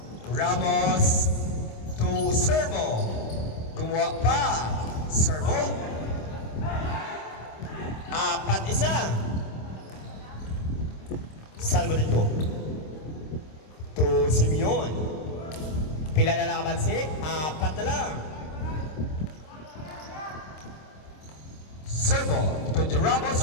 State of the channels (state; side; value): late; right; 26 ms